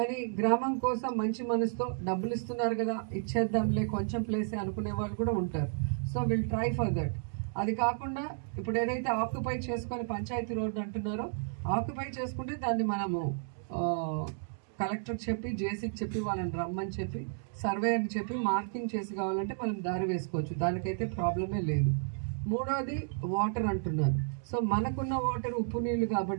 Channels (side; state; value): left; silent; digital silence